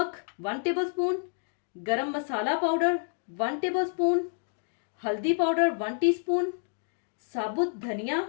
1 टेबल स्पून, गरम मसाला पाउडर 1 टेबल स्पून, हल्दी पाउडर 1 टीस्पून, साबुत धनिया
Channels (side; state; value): right; silent; 59 dB below the other